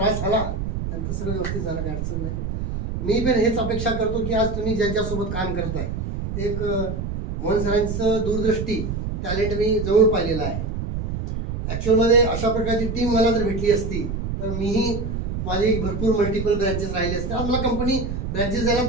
झाला, नंतर सगळं व्यवस्थित झालं, काही अडचण नाही. मी पण हेच अपेक्षा करतो की आज तुम्ही ज्यांच्यासोबत काम करताय, एक मोहन सरांचं दूरदृष्टी, टॅलेंट मी जवळ पाहिलेलं आहे. ॲक्च्युअलमध्ये अशा प्रकारची टीम मला जर भेटली असती तर मीही माझी भरपूर मल्टिपल ब्रँचेस राहिले असते. आज मला कंपनी ब्रँचेस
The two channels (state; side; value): noise; right; rumble, 4 dB below the sound